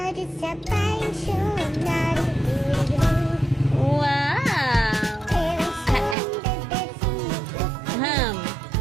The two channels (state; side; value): drops out; left; at 6.2 s